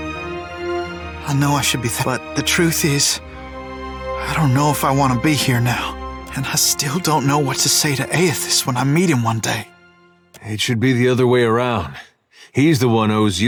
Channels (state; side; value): identical; both; correlation 1.00